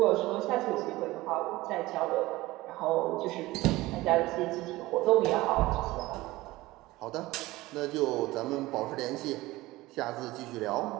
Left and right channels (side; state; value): left; quieter; 19.0 dB